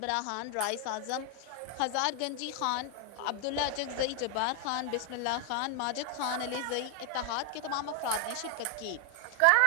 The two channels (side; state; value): both; different; correlation 0.00